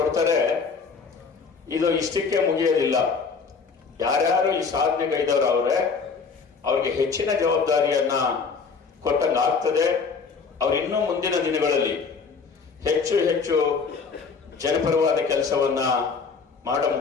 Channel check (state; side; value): quieter; right; 5.2 dB